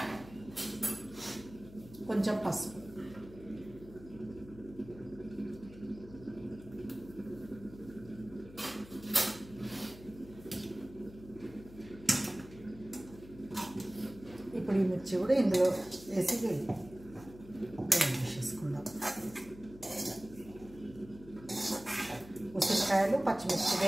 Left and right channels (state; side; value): noise; left; hum, 18 dB below the sound